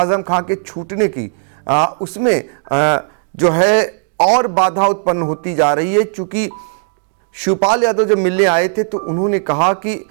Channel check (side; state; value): left; silent; digital silence